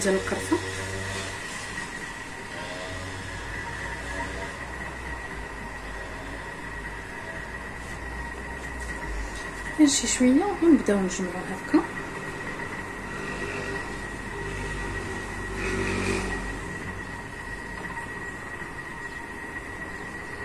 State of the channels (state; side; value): identical; both; correlation 1.00